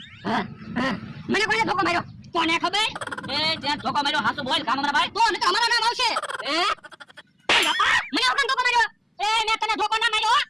મને કોણે ધોકો માર્યો કોને ખબર એ ત્યાં ધોકો માર્યો, હાસુ બોલ કામ અમારા ભાઈ. તો ને અમારું નામ આવશે હે ઓય બાપા મને ઓકન ધોકો માર્યો એ મેં તને ધોકો ના માર્યો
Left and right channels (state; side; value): identical; both; correlation 1.00